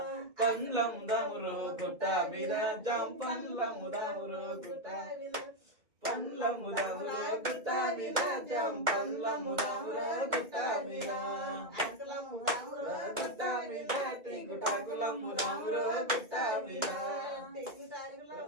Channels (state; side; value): late; left; 2.1 ms